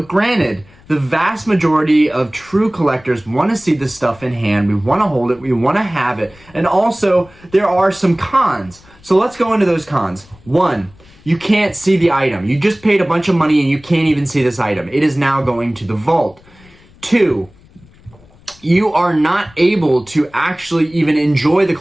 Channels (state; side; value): noise; left; rumble, 27 dB below the sound